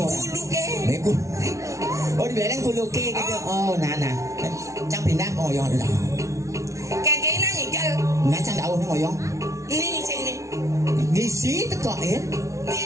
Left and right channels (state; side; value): late; left; 0.15 ms